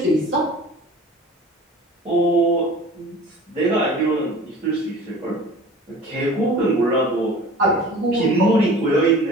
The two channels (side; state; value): both; normal; correlation 0.42